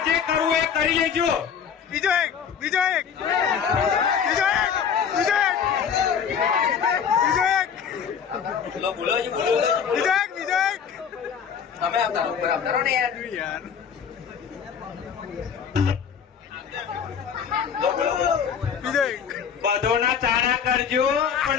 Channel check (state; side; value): quieter; right; 7.4 dB